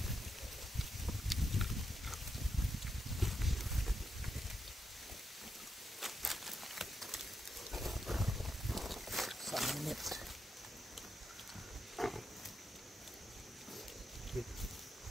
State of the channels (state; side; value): normal; both; correlation 0.84